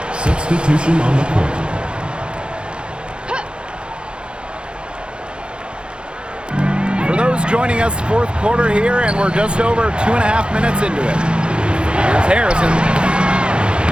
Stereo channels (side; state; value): left; late; 0.054 ms